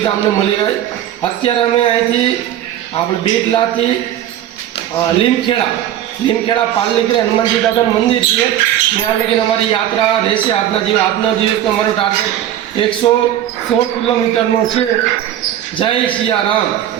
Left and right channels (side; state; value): left; quieter; 11.6 dB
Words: અમને મળી રહે. અત્યારે અમે અહીંથી આપણે બેટલાથી લીમખેડા પાલ નીકળે હનુમાનજી દાદાનું મંદિર છે. ત્યાં લગીને અમારી યાત્રા રહેશે. આજનો દિવસ અમારો ટાર્ગેટ 116 કિલોમીટરનો છે. જય સિયારામ.